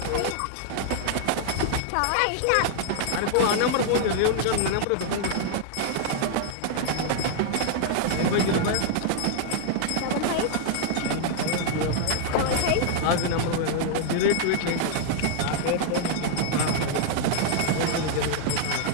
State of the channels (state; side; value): different; both; correlation 0.00